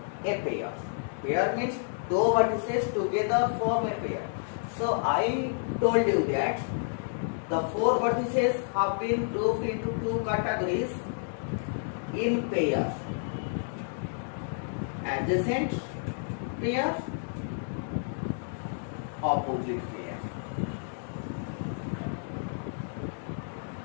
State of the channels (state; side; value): silent; right; digital silence